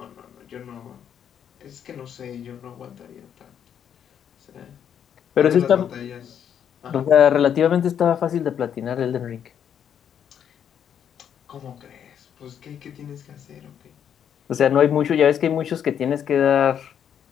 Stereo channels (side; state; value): right; quieter; 8.8 dB